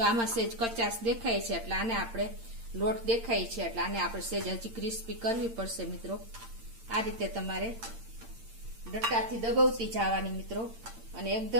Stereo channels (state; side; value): late; left; 8.8 ms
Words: આમાં સેજ કચાશ દેખાય છે એટલે આને આપણે લોટ દેખાય છે એટલે આને આપણે સેજ હજી ક્રિસ્પી કરવી પડશે મિત્રો. આ રીતે તમારે ડટ્ટાથી દબાવતી જવાની મિત્રો અને